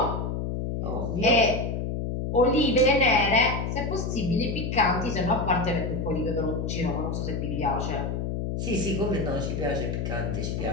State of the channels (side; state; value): left; noise; hum, 2 dB below the sound